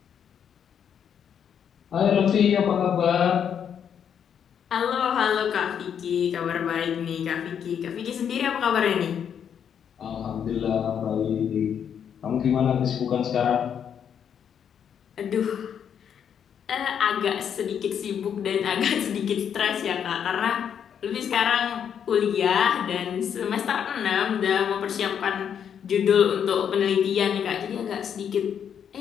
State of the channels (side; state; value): right; quieter; 8.2 dB